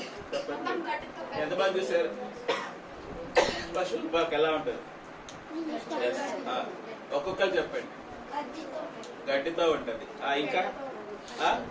చెప్పండి, ఎంతమంది చూసారు? పశువుల పాక ఎలా ఉంటది? ఒక్కొక్కరు చెప్పండి. గడ్డితో ఉంటది. ఇంకా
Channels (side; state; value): both; identical; correlation 1.00